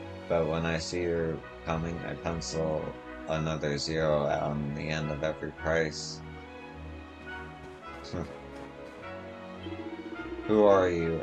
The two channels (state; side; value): identical; both; correlation 1.00